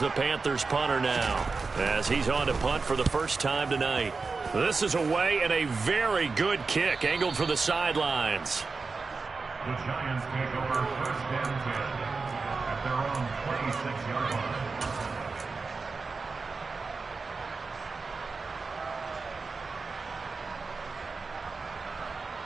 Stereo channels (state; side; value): quieter; left; 4.3 dB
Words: Panthers punter now as he's on to punt for the first time tonight. This is away and a very good kick angled for the sidelines. The Giants take over 1st and 10 at their own 26-yard line.